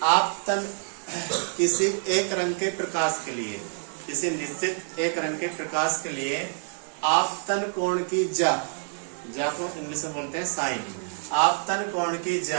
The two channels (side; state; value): left; silent; 60 dB below the other